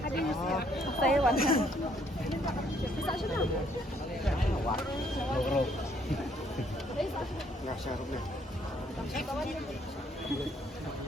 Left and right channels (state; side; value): normal; both; correlation 0.67